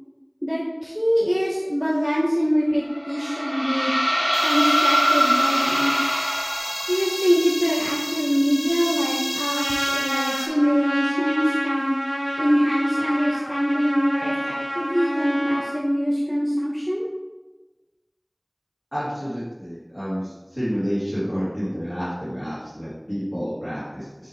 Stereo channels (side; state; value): both; identical; correlation 1.00